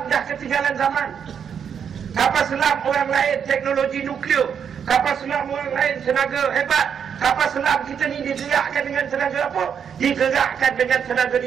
dah ketinggalan zaman. Kapal selam orang lain teknologi nuklear, kapal selam orang lain tenaga hebat. Kapal selam kita ni digerakkan dengan tenaga apa? Digerakkan dengan tenaga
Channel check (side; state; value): left; quieter; 7.6 dB